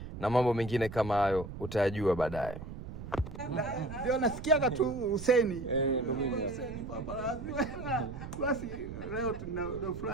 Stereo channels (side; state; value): right; noise; rumble, 10 dB below the sound